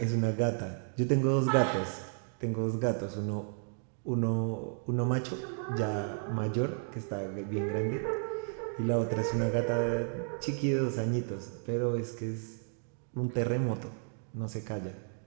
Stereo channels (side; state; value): left; silent; 56 dB below the other